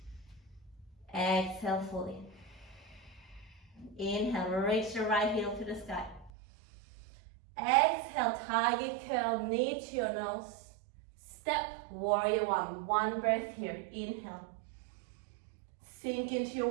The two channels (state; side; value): drops out; left; at 6.3 s